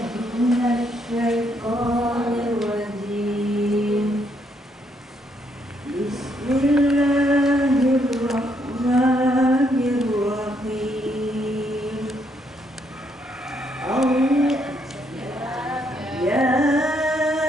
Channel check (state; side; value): normal; both; correlation 0.73